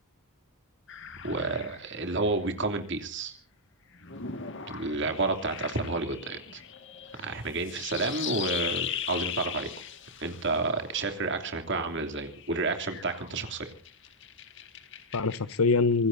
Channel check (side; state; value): both; normal; correlation -0.05